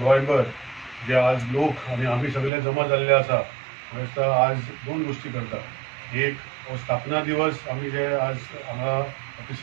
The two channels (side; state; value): left; drops out; at 2.5 s